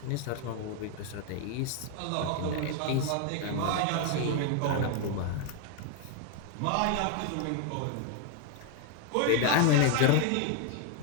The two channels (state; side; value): different; both; correlation 0.01